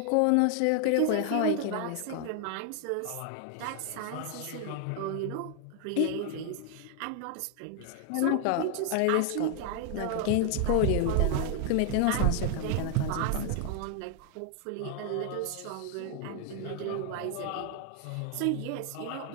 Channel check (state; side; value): different; both; correlation 0.00